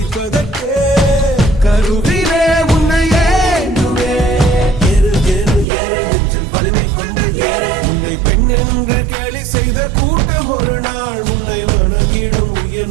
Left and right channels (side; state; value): left; drops out; at 5.7 s